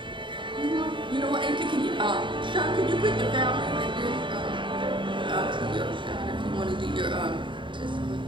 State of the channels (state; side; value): late; left; 0.23 ms